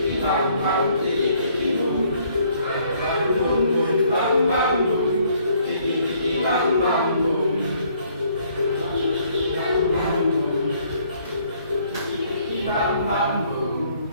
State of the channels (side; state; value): both; inverted; correlation -0.64